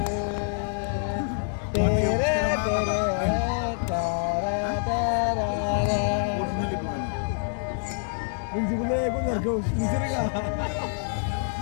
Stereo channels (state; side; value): silent; right; digital silence